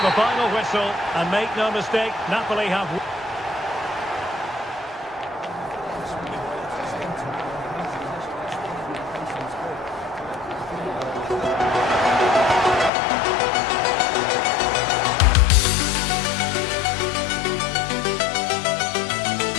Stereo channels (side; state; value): right; drops out; at 12.9 s